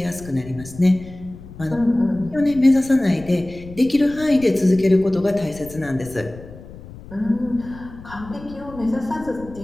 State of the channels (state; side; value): noise; left; rumble, 17 dB below the sound